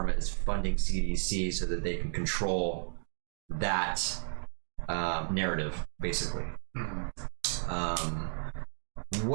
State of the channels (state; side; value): silent; left; digital silence